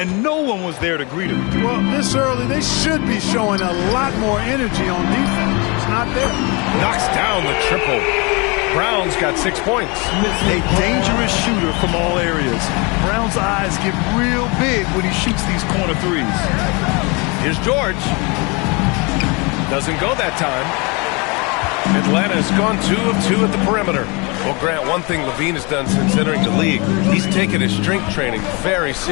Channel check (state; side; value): quieter; right; 29.2 dB